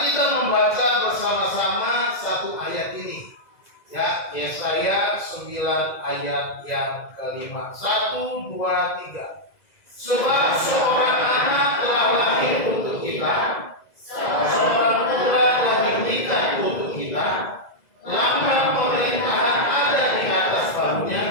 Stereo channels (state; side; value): late; right; 2.0 ms